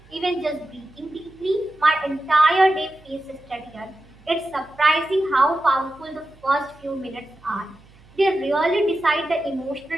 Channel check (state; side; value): noise; right; hum, 26 dB below the sound